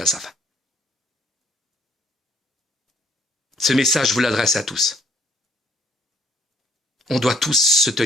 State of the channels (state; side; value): normal; both; correlation 0.65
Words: sa faim. Ce message, je vous l'adresse à tous. On doit tous se